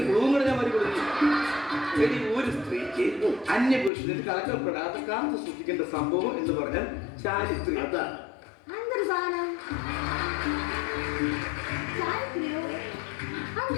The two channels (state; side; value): drops out; right; at 3.9 s